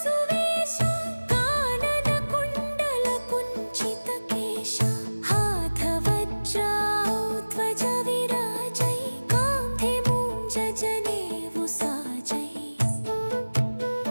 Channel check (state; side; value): inverted; both; correlation -1.00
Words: सुवेश कानन कुंडल कुंचित केश हाथ वज्र ध्वज विराजै कांधे मूंज जनेऊ साजै